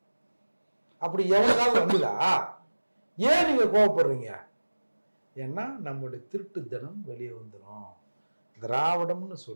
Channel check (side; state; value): both; inverted; correlation -1.00